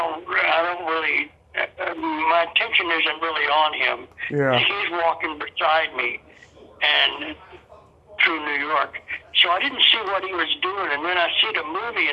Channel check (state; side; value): identical; both; correlation 1.00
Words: really. My attention isn't really on him. Yeah. He's walking beside me, and through New York. So I didn't see what he was doing, and then I see the movie,